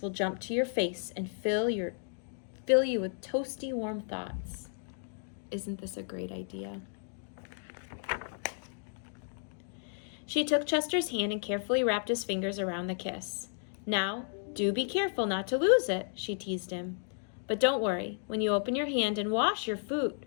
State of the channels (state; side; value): silent; right; digital silence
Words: will jump to your face and fill you with toasty, warm thoughts. Isn't this a great idea?" She took Chester's hand and carefully wrapped his fingers around the kiss. "Now, do be careful not to lose it," she teased him. "But don't worry, when you open your hand and wash your food,